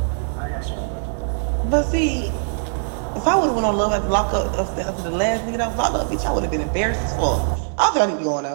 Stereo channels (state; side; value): silent; left; 56 dB below the other